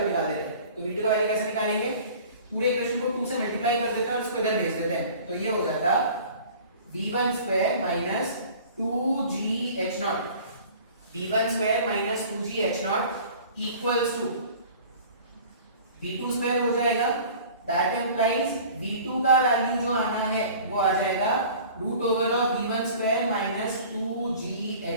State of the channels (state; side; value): inverted; both; correlation -0.45